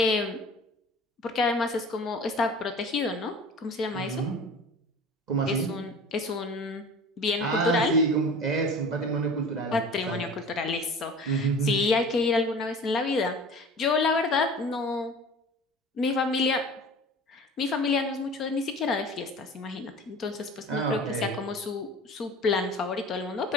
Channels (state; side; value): normal; both; correlation 0.41